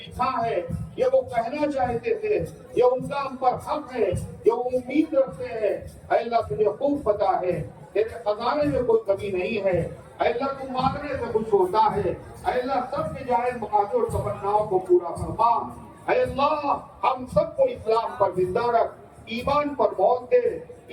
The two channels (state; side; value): identical; both; correlation 1.00